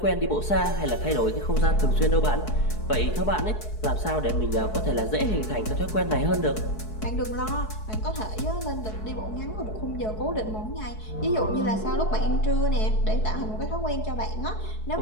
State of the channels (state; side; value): late; right; 4.7 ms